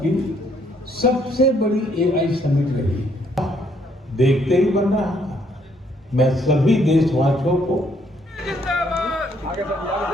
की सबसे बड़ी एआई समिट रही। देखते ही बन रहा था। मैं सभी देशवासियों को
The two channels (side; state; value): both; normal; correlation 0.69